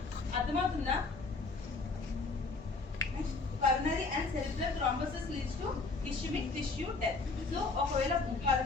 అర్థమవుతుందా? Coronary and cerebral thrombosis leads to ischaemic tissue death. So ఒకవేళ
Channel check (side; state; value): right; quieter; 3.9 dB